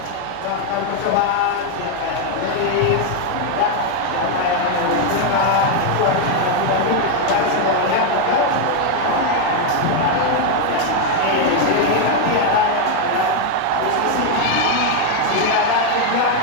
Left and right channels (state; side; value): different; both; correlation 0.01